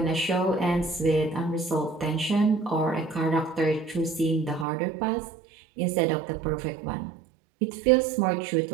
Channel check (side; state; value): left; drops out; at 4.7 s